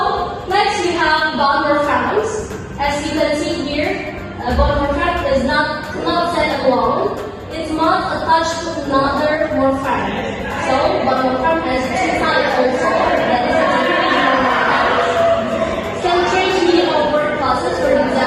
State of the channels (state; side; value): identical; both; correlation 1.00